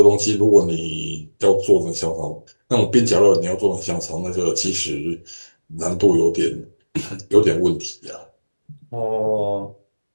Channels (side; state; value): both; inverted; correlation -1.00